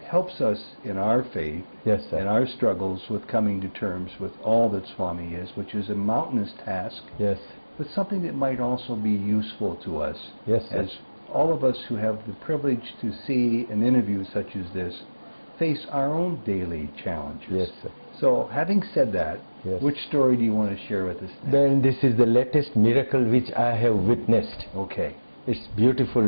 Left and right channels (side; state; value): both; inverted; correlation -1.00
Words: helps us in our faith, Yes, sir. and our struggles with coming to terms with all that Swami is, which is a mountainous task, Yes. but something that might also be useful to us. Yes, sir. As all of us who have the privilege to see an interview such as this face our own daily challenges. Yes, sir. So, having said that, Yes. which story do you want to share with us next? Then this is the latest miracle which I have witnessed. Okay. It's beautiful,